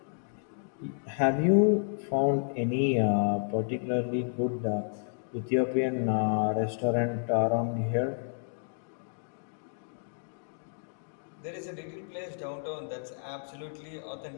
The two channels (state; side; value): silent; right; digital silence